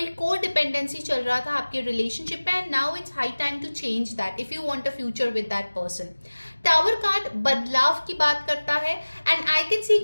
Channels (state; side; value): inverted; both; correlation -1.00